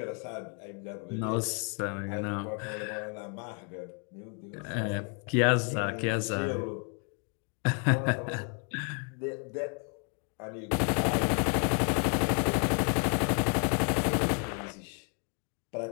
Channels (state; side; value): quieter; right; 39.3 dB